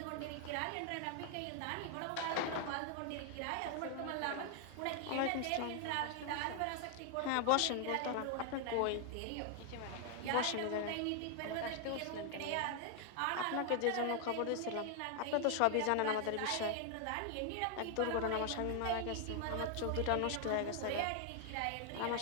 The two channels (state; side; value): different; both; correlation 0.00